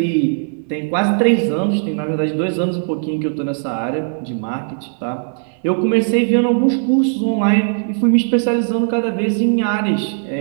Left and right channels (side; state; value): left; silent; 59 dB below the other